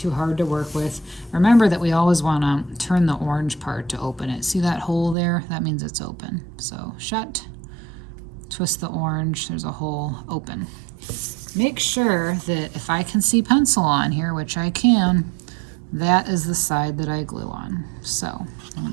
hard to work with. Remember that we always wanna turn the orange part to open it. See that hole there? That means it's open. So shut, twist the orange, there's a hole, open. Make sure that if I can see pencil on here, which I can, that is the side that I glue on. So I'm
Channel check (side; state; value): left; drops out; at 5.2 s